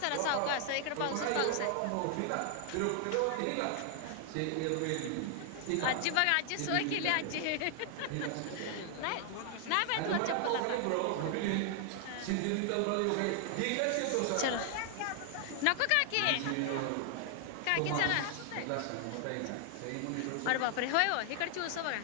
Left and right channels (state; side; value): different; both; correlation 0.00